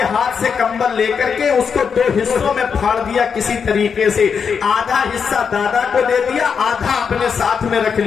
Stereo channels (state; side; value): quieter; right; 6.4 dB